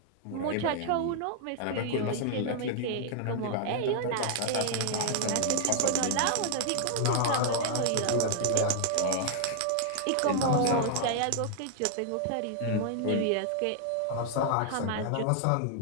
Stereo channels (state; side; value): different; both; correlation -0.01